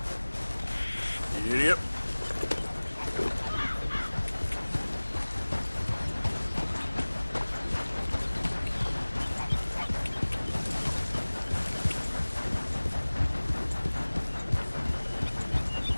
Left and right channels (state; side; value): inverted; both; correlation -1.00